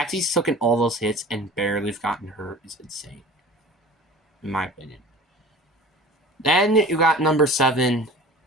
he's taken all those hits and barely gotten hurt is insane, in my opinion. Then you got number 7,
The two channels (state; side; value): normal; both; correlation 0.40